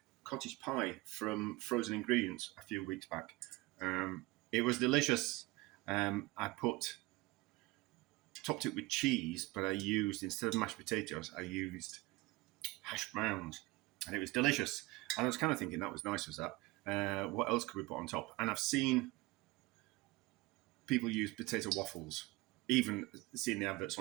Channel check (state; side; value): quieter; left; 21.4 dB